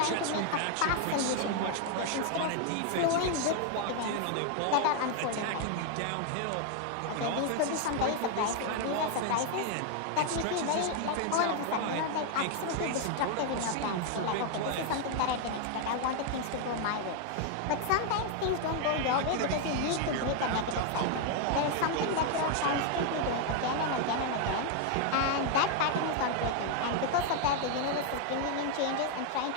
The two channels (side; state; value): both; different; correlation 0.00